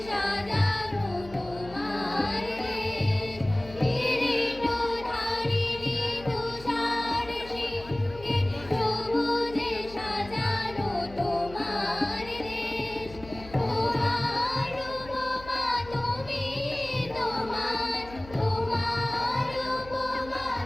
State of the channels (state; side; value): noise; left; hum, 17 dB below the sound